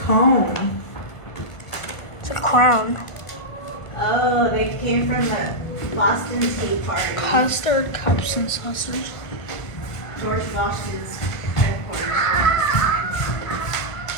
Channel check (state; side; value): late; right; 1.5 ms